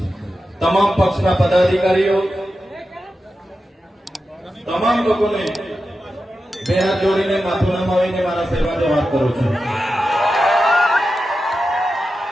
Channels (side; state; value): both; normal; correlation 0.91